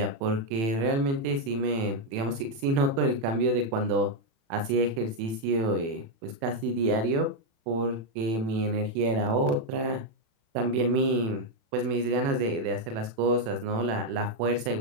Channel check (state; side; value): late; left; 36 ms